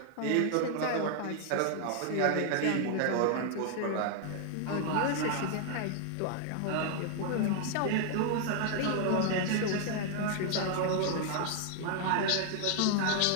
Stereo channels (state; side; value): different; both; correlation 0.00